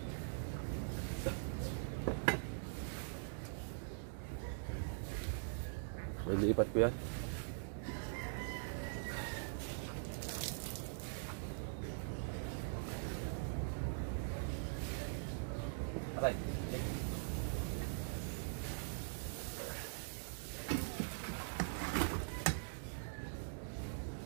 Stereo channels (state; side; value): silent; left; digital silence